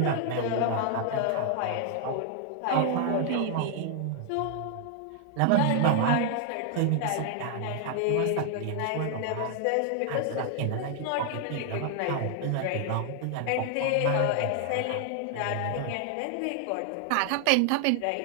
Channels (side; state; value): both; different; correlation 0.00